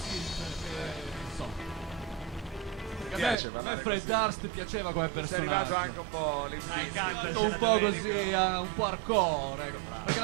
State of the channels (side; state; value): left; drops out; at 3.4 s